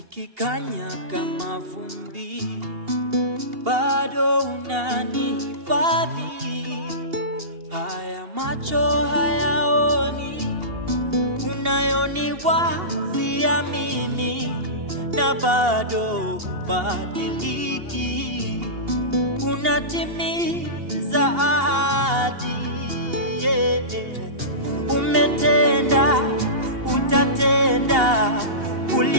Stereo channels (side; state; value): left; late; 2.8 ms